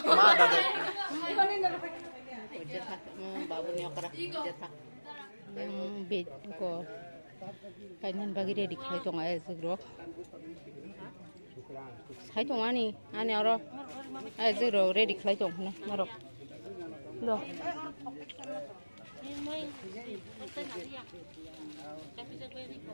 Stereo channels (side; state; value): both; inverted; correlation -1.00